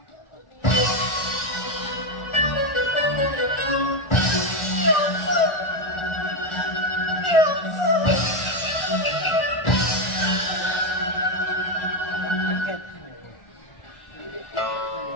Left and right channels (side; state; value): right; late; 1.4 ms